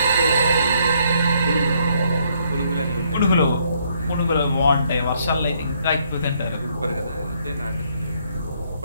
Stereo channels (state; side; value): inverted; both; correlation -0.70